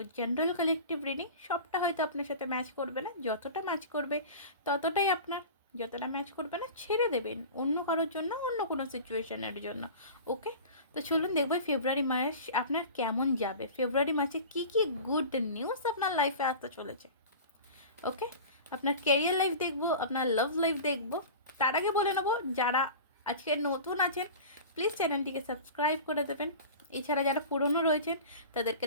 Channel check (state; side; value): inverted; both; correlation -0.35